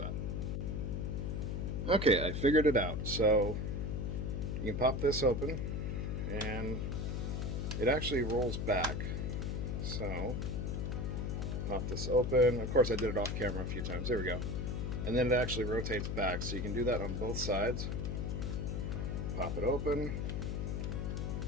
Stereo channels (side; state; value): left; noise; hum, 1 dB below the sound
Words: Okay, I figured it out. So you can pop this open and it actually rolls back. So pop this open. Of course I did it off camera a few times. There we go. And then it actually rotates back. So you can do that on both sides. Pop it open.